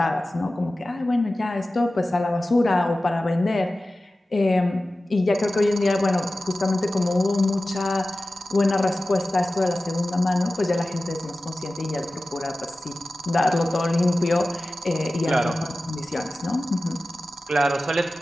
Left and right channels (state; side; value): normal; both; correlation 0.96